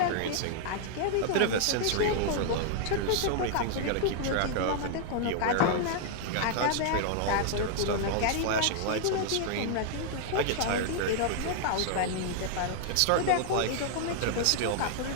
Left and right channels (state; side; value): different; both; correlation 0.00